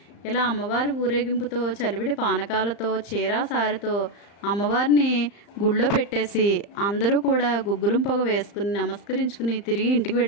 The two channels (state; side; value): late; right; 35 ms